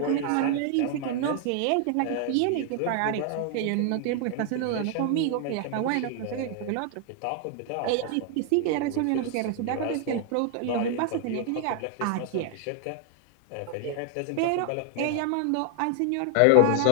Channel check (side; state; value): both; different; correlation 0.00